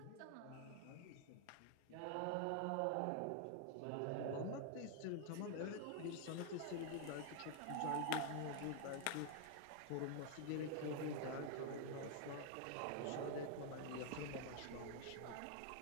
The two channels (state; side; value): different; both; correlation 0.00